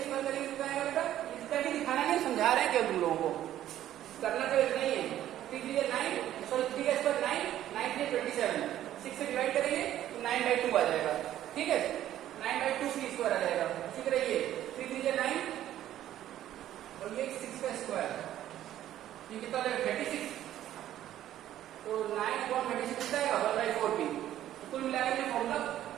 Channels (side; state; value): left; quieter; 12.4 dB